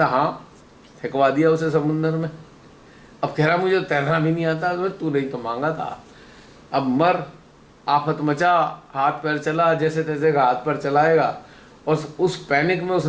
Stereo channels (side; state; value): both; identical; correlation 1.00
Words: हाँ, फेंकवा दिया उसे समुंदर में। अब कह रहा मुझे तैरना भी नहीं आता, तो तू नहीं तो मांगा था, अब मर, आफत मचा, हाथ पैर चला, जैसे तैसे का हाथ पैर चलाएगा, और उस पैनिक में